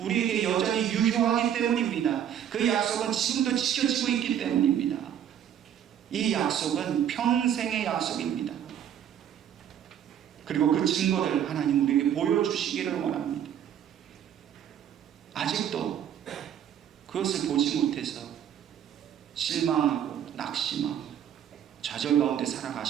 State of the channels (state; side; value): quieter; left; 9.7 dB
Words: 여전히 유효하기 때문입니다. 그 약속은 지금도 지켜지고 있기 때문입니다. 이 약속은 평생의 약속입니다. 그리고 그 증거를 하나님 우리에게 보여주시기를 원합니다. 아직도 그것을 보지 못해서 실망하고 낙심하고 좌절 가운데